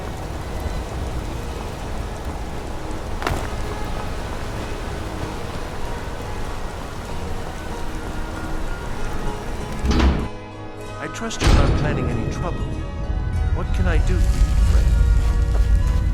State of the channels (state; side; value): identical; both; correlation 1.00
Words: trust you're not planning any trouble. What can I do for you, friend?